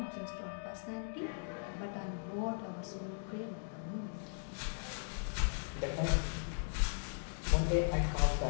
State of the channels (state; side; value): silent; right; digital silence